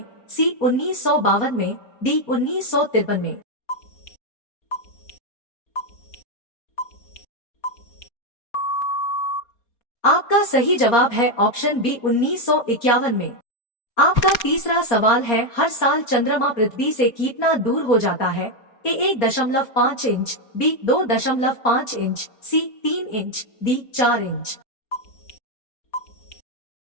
सी, 1952 में। डी, 1953 में। आपका सही जवाब है ऑप्शन बी, 1951 में। आपका तीसरा सवाल है, हर साल चंद्रमा पृथ्वी से कितना दूर हो जाता है? A, 1.5 inch. B, 2.5 inch. C, 3 inch. D, 4 inch.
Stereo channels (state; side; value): late; right; 4.3 ms